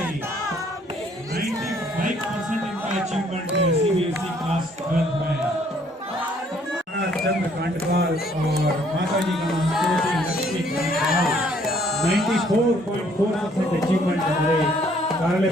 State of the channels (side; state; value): both; normal; correlation 0.63